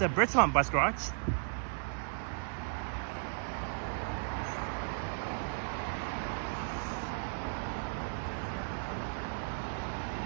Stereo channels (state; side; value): silent; left; 54 dB below the other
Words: Bridgemont bus garage.